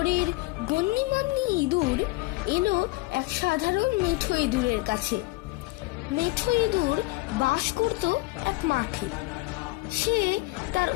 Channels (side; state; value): right; quieter; 22.0 dB